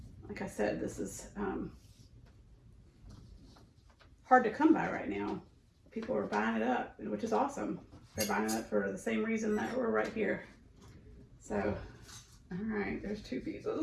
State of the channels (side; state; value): both; identical; correlation 1.00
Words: Like I said, this is hard to come by right now. People are buying it up, which is awesome. They're buying it up for the same reason that we're right here. So, all right, there's 2